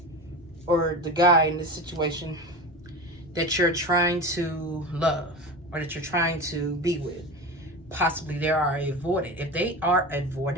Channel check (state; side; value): normal; both; correlation 0.27